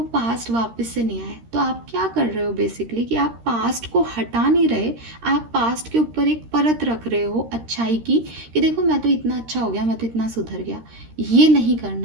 पास्ट वापस से नहीं आए। तो आप क्या कर रहे हो बेसिकली कि आप पास्ट को हटा नहीं रहे, आप पास्ट के ऊपर एक परत रख रहे हो अच्छाई की, कि देखो मैं तो इतना अच्छा हो गया, मैं तो इतना सुधर गया। ये नहीं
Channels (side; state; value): left; late; 13 ms